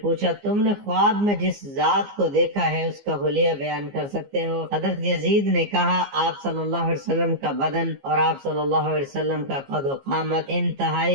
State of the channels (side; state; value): left; late; 15 ms